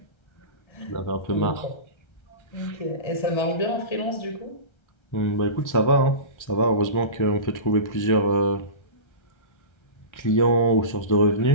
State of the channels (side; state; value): right; late; 1.3 ms